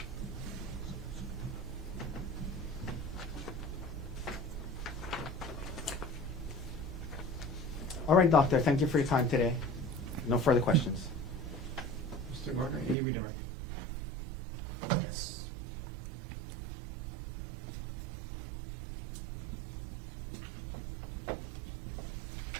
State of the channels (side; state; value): left; drops out; at 13.0 s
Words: All right, doctor, thank you for your time today. No further questions. Mr. Gardner, any redirect? Yes.